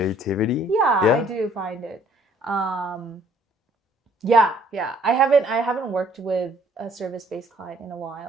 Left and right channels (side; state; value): both; normal; correlation 0.61